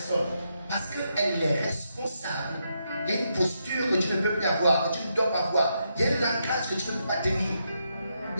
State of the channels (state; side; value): inverted; both; correlation -0.81